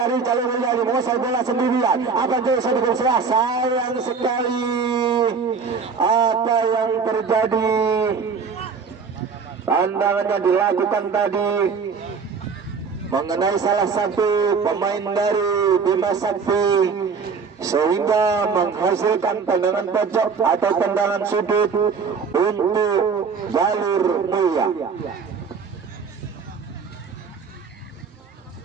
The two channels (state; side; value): quieter; left; 5.5 dB